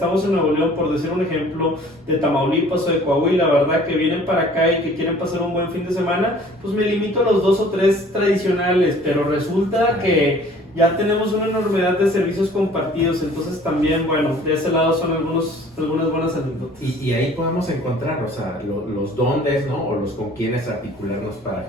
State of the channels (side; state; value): both; normal; correlation 0.51